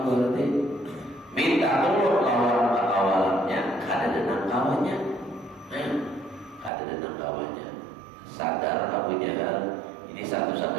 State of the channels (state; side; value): drops out; left; at 6.7 s